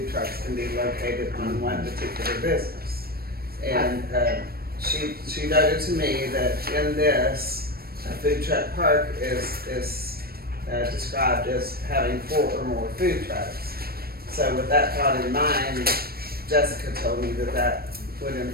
trucks can be located on one particular business. And she noted to me that in this, a food truck park is described as having 4 or more food trucks. So with that thought in mind, Jessica told me that would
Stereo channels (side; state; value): left; late; 0.44 ms